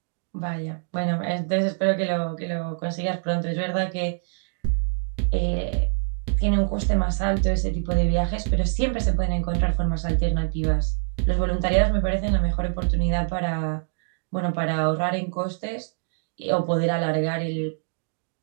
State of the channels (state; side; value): silent; left; digital silence